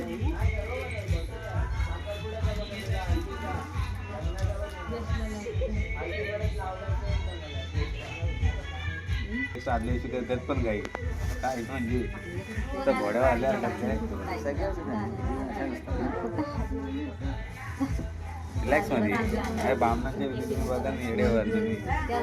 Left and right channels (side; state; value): both; identical; correlation 1.00